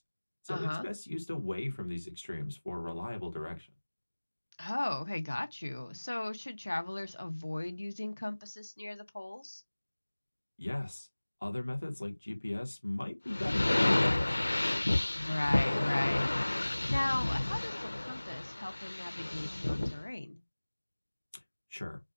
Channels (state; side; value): inverted; both; correlation -1.00